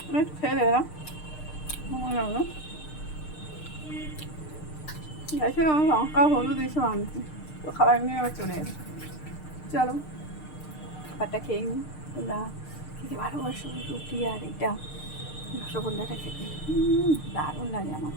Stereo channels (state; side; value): late; right; 6.6 ms